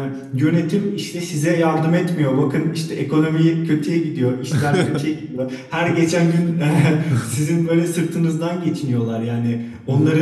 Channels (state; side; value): identical; both; correlation 1.00